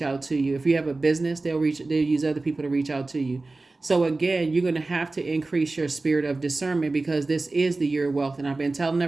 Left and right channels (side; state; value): left; quieter; 3.3 dB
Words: out to you. If you have a business, they'll use other people to reach out to you. So again, you're going to have to increase your spirit of discernment, because this is the year of wealth. And I've been telling